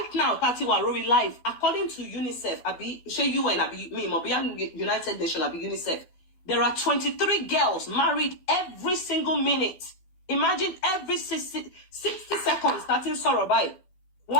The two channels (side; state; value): right; late; 12 ms